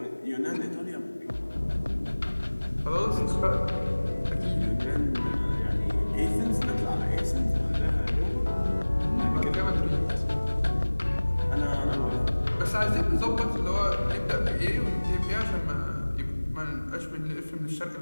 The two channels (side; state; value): both; inverted; correlation -1.00